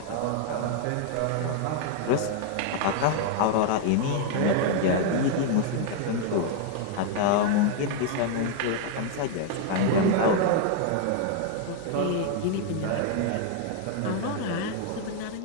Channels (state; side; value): different; both; correlation 0.00